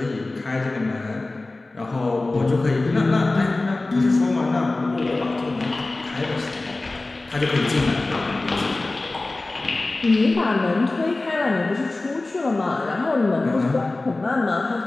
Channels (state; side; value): quieter; right; 3.1 dB